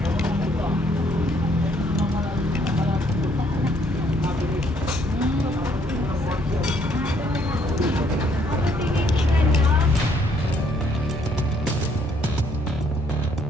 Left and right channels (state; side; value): normal; both; correlation 0.67